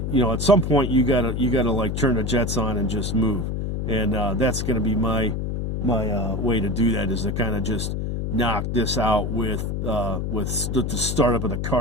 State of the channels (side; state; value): left; noise; hum, 2 dB below the sound